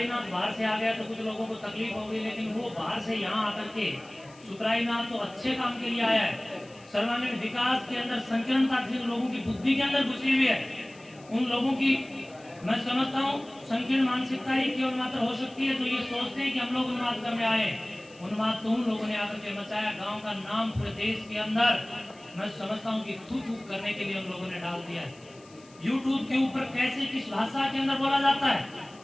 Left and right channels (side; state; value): left; noise; hiss, 26 dB below the sound